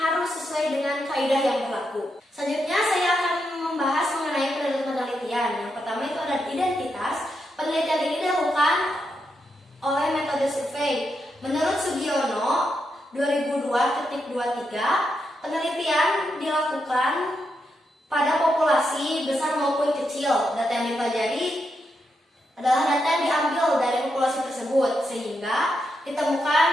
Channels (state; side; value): normal; both; correlation 0.83